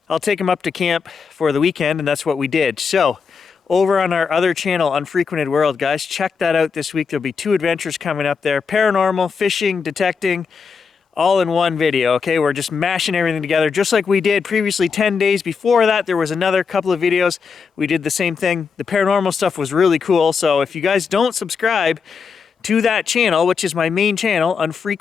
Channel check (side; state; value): right; quieter; 5.6 dB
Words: I'll take him up to camp for the weekend, and that's what we did. So over on our other channel, UnfrequentedWorld, guys, check that out this week. There'll be 2 adventures coming up there. Paranormal, fishing, detecting, all in one video, okay? We're just mashing everything together just like we did previously 10 days before that. There was another couple of videos. We did the same thing. The paranormal stuff was really cool. So if you guys don't subscribe to that channel, which is my main channel,